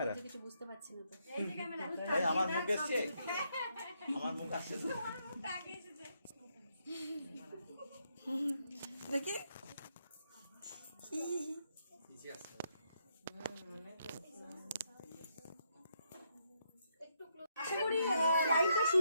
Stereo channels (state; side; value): inverted; both; correlation -0.77